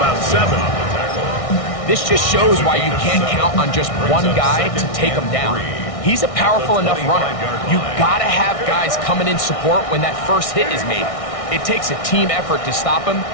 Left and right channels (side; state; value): right; late; 1.6 ms